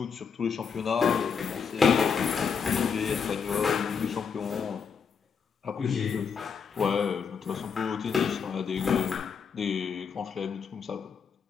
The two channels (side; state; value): right; quieter; 6.3 dB